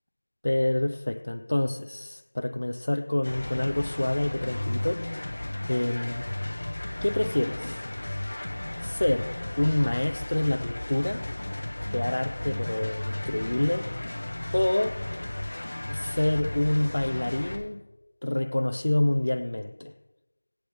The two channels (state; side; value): inverted; both; correlation -1.00